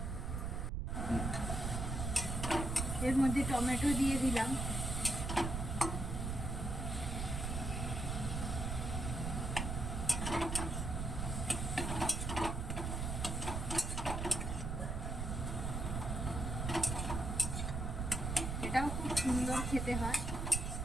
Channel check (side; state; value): right; noise; rumble, 2 dB below the sound